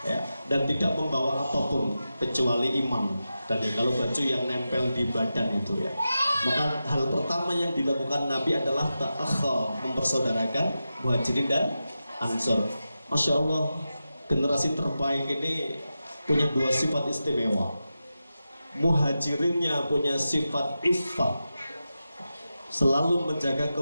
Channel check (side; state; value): both; inverted; correlation -0.91